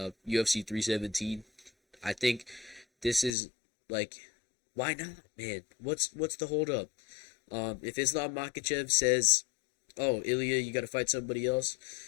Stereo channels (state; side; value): drops out; right; at 3.4 s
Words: 317. I think this is like, why not, man? What's the hold up? If Islam Makhachev says, "Oh, Ilya, you got to fight somebody else,"